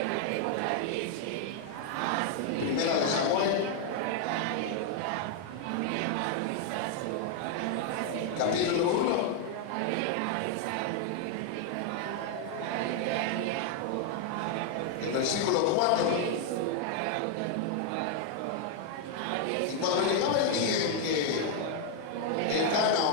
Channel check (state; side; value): different; both; correlation 0.00